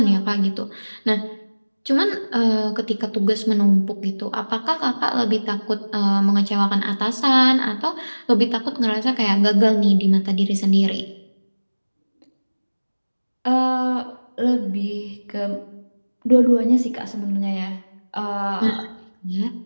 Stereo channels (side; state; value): both; inverted; correlation -1.00